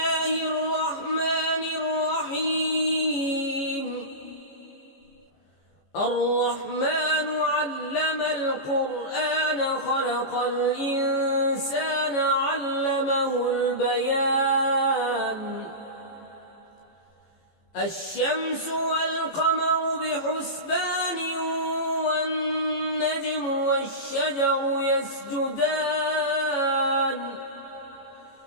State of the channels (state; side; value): late; right; 14 ms